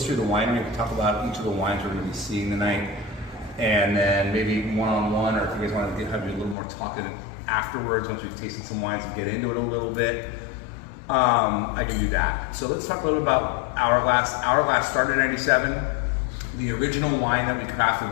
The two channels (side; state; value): right; drops out; at 6.6 s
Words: of the winery. We can talk about each of the wines we're going to be seeing tonight, and then maybe one-on-one, or if you guys want to have a little more talking afterwards once we've tasted some wines and get into it a little bit. I can do that. So let's talk a little bit about Hourglass. Hourglass started in '97. The original wine that we crafted